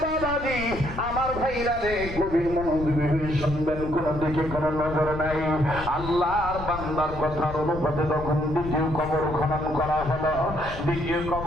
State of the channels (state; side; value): noise; left; rumble, 10 dB below the sound